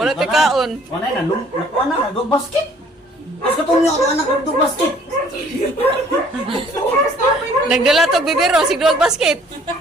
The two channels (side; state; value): both; normal; correlation 0.57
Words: ka kaon. Wala na dog basket. Kasi kung yung anak ng dog basket. Nagdala to bibiro, sigduwag basket.